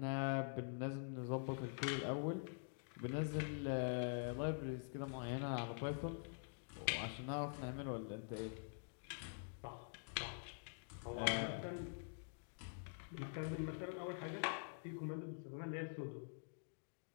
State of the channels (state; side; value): silent; right; digital silence